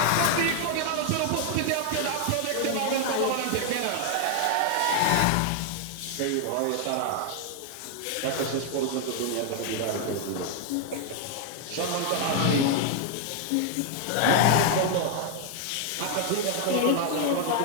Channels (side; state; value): both; different; correlation 0.00